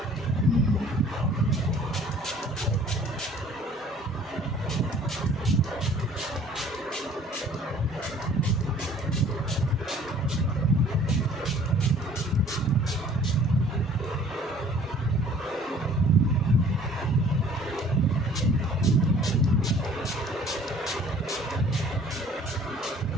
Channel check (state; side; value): normal; both; correlation 0.53